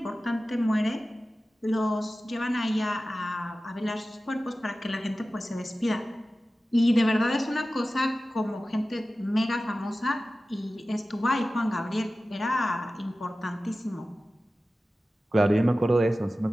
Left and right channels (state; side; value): normal; both; correlation 0.95